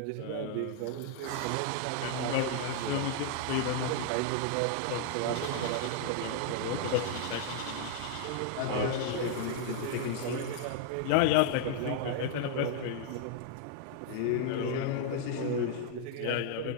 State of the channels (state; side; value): different; both; correlation 0.00